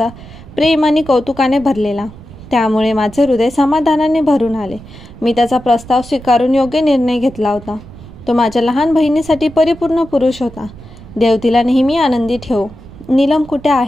प्रेम आणि कौतुकाने भरलेला, त्यामुळे माझे हृदय समाधानाने भरून आले. मी त्याचा प्रस्ताव स्वीकारून योग्य निर्णय घेतला होता. तो माझ्या लहान बहिणीसाठी परिपूर्ण पुरुष होता. देव तिला नेहमी आनंदी ठेवो. नीलम कुठे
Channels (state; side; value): noise; right; rumble, 18 dB below the sound